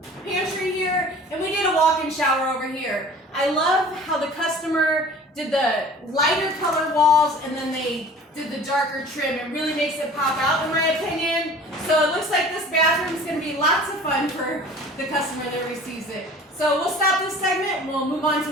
pantry here, and we did a walk-in shower over here. I love how the customer did the lighter color walls and then they did the darker trim. It really makes it pop out, in my opinion. So it looks like this bathroom is going to be lots of fun for the customer that receives it. So we'll stop this segment and we'll move on to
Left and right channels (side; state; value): both; normal; correlation 0.45